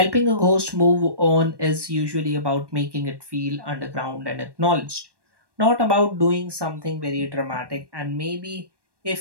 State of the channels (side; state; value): left; late; 1.1 ms